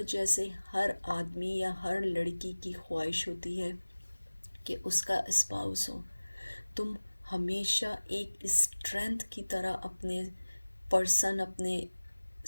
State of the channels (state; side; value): inverted; both; correlation -1.00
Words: जैसे हर आदमी या हर लड़की की ख्वाहिश होती है कि उसका स्पाउस हो। तुम हमेशा एक स्ट्रेंथ की तरह अपने